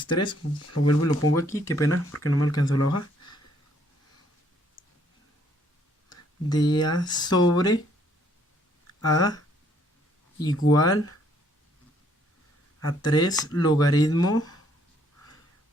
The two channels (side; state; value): both; normal; correlation 0.66